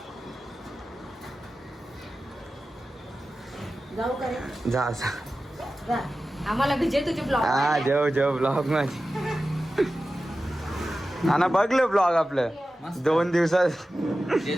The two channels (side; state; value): both; normal; correlation 0.94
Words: जाऊ करे जा आम्हाला विजय तुझे ब्लॉग हा जेव ब्लॉग माझी ना बघलं ब्लॉग आपलं 2 दिवसात